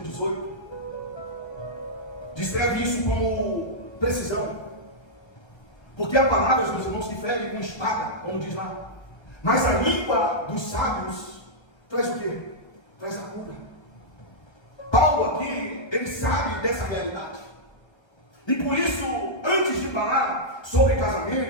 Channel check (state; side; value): late; right; 1.3 ms